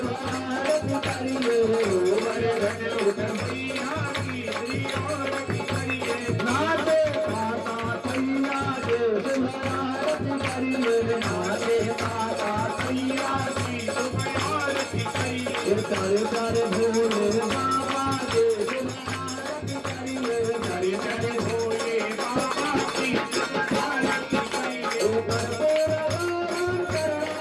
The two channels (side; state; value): both; identical; correlation 1.00